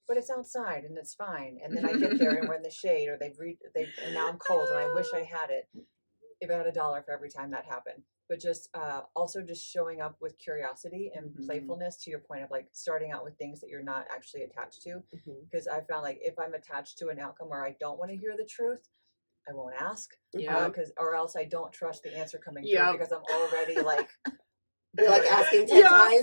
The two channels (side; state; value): both; inverted; correlation -1.00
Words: but it's outside and it's fine. And then I get there and we're in the shade, or and now I'm cold and I wish I had it. If I had $1 for every time that happened. But just also just showing up with curiosity and playfulness, to your point of like starting out with things that you're not actually attached to. Because I found like if I'm attached to an outcome where I don't want to hear the truth, I won't ask. Or else I don't trust the answer coming through, because I'm already like, you're like asking 10